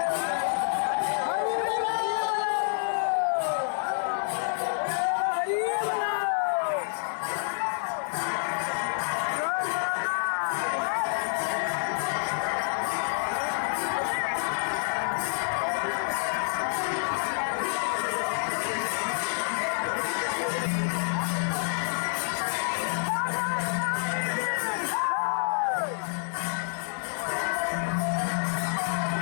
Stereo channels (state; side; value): silent; right; 59 dB below the other